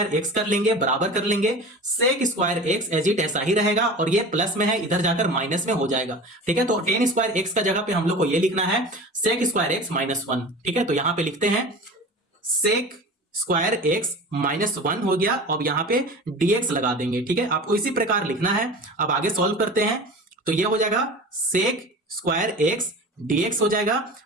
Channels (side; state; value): both; normal; correlation 0.35